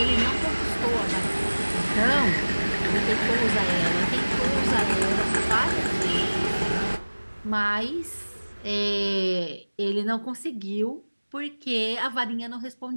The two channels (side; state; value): both; inverted; correlation -1.00